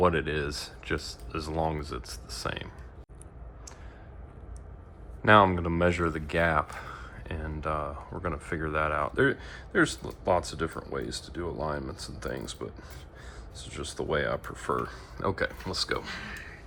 it is, just as long as it's the same. Now I'm going to measure the gap, and we're going to figure that out. There's lots of different ways to do alignments and things, but this is just the way I prefer. Okay, let's go.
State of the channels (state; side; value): identical; both; correlation 1.00